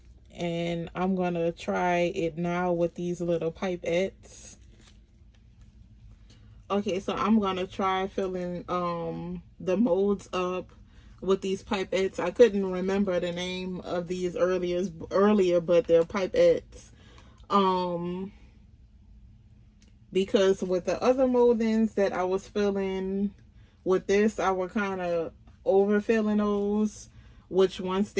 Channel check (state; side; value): identical; both; correlation 1.00